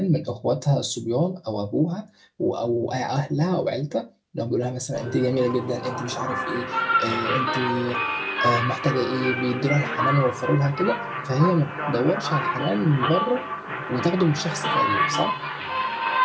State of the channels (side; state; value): both; identical; correlation 1.00